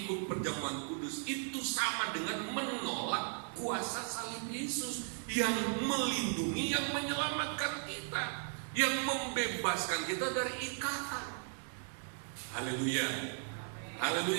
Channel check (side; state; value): left; silent; 53 dB below the other